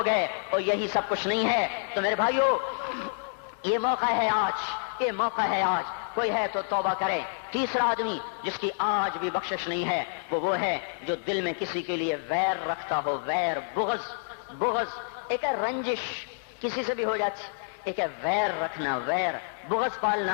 گئے، اور یہی سب کچھ نہیں ہے۔ تو میرے بھائیو، یہ موقع ہے آج، یہ موقع ہے آج، کوئی ہے تو توبہ کرے۔ تیسرا آدمی جس کی آج بھی بخشش نہیں ہے وہ ہے جو دل میں کسی کے لیے ویر رکھتا ہو، ویر، بغض، ایک ہے رنجش، کسی سے بھی ہو جاتی، ایک ہے ویر رکھنا، ویر، بغض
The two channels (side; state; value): right; silent; digital silence